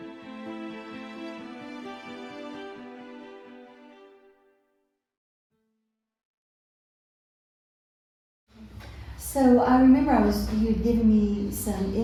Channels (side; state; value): both; identical; correlation 1.00